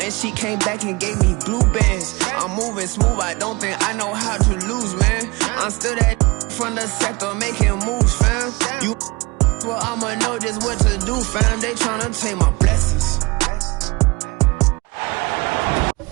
and she came back and gave me blue bands. I'm moving smooth, I don't think I know how to lose, man. I'm still that from the sector making moves, fam. You well, I'ma know just what to do, fam. They tryna take my blessings.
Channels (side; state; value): left; quieter; 24.7 dB